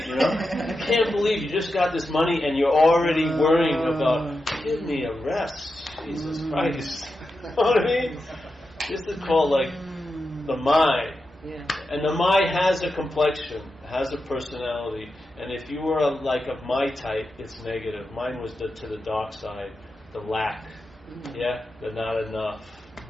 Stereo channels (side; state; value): both; normal; correlation 0.89